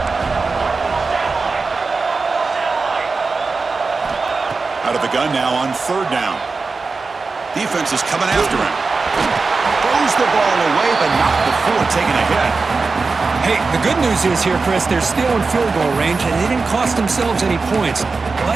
Out of the gun now on 3rd down. Defense is coming after him. Throws the ball away, but not before taking a hit. Hey, the good news is here, Chris, they're still in field goal range, and they didn't cost themselves any points,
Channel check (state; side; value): quieter; left; 4.2 dB